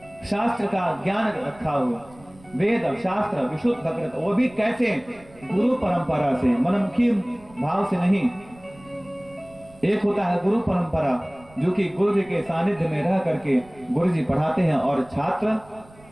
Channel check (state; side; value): noise; right; rumble, 25 dB below the sound